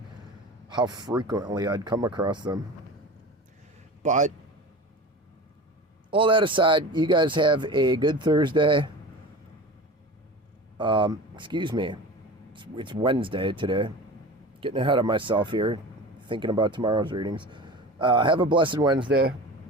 how frequently I'd come across them. But all that aside, you guys have a good Thursday. Excuse me. It's Wednesday today. Getting ahead of myself here, thinking about tomorrow's readings. Have a blessed Wednesday.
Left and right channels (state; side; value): normal; both; correlation 0.33